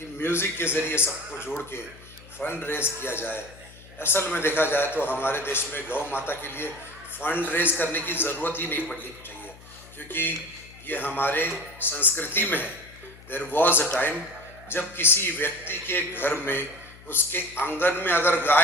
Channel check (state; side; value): noise; left; hum, 21 dB below the sound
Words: म्यूजिक के जरिए सबको जोड़ के फंड रेज किया जाए। असल में देखा जाए तो हमारे देश में गौ माता के लिए फंड रेज करने की जरूरत ही नहीं पड़नी चाहिए, क्योंकि ये हमारे संस्कृति में है। देयर वॉज अ टाइम जब किसी व्यक्ति के घर में उसके आंगन में अगर